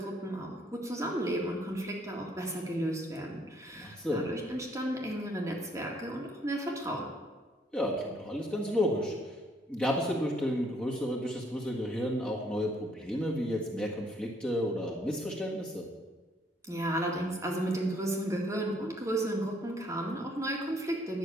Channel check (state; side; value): normal; both; correlation 0.66